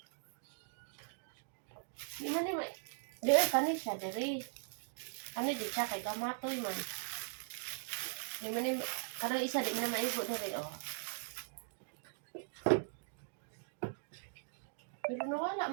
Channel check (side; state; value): left; silent; digital silence